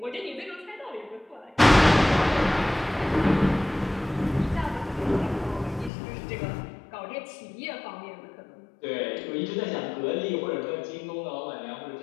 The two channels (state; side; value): drops out; right; at 5.9 s